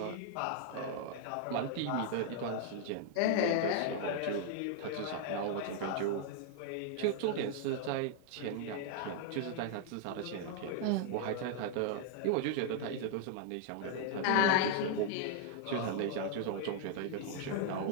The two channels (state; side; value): different; both; correlation 0.00